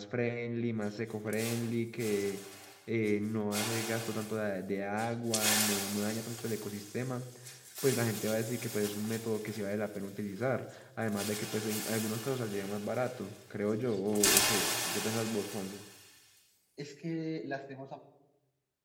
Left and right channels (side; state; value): both; identical; correlation 1.00